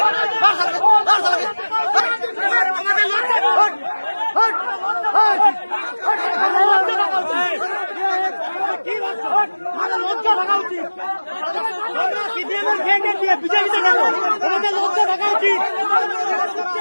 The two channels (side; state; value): both; inverted; correlation -1.00